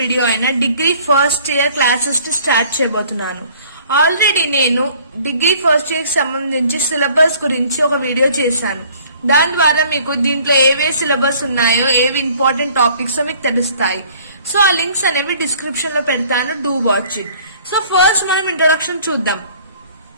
video అయిన degree first year classes to start చేయబోతున్నాను. Already నేను degree first year కి సంబంధించి syllabus గురించి ఒక వీడియో చేశాను. దాని ద్వారా మీకు దీంట్లో ఏవే సిలబస్ ఉన్నాయో, ఏవి ఇంపార్టెంట్ టాపిక్స్ మీకు తెలుస్తాయి. సో ఆ లింక్స్ అనేవి డిస్క్రిప్షన్ లో పెడతాను, do watch it. So first మనం ఇంట్రొడక్షన్ చూద్దాం.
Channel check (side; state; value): both; inverted; correlation -0.54